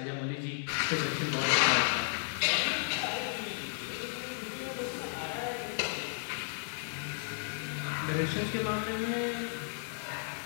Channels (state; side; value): silent; right; digital silence